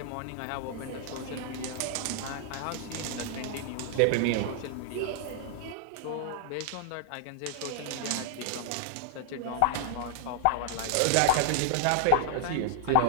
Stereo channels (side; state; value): both; different; correlation -0.01